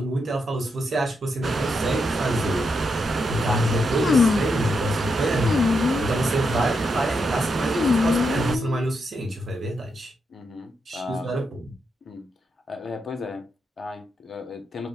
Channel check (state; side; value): normal; both; correlation 0.83